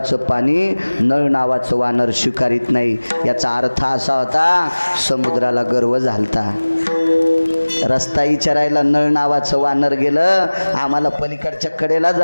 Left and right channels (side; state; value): both; inverted; correlation -1.00